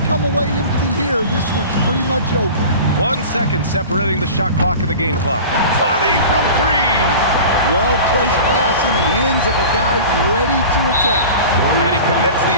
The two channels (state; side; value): inverted; both; correlation -0.37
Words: come away empty here, this one's pretty much over. 1 second separating the shot clock and the game clock. 20 from 3. Well-placed pass in the hands of a guy ready to attack. And he commits the